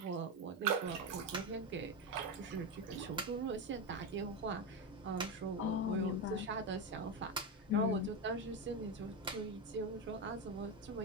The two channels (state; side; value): normal; both; correlation 0.13